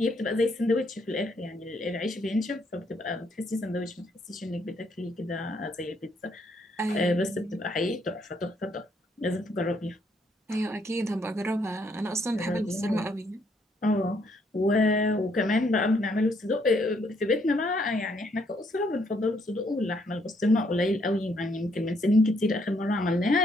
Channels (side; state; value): both; normal; correlation 0.71